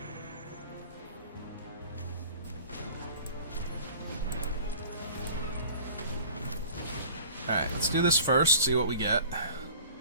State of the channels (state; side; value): inverted; both; correlation -0.46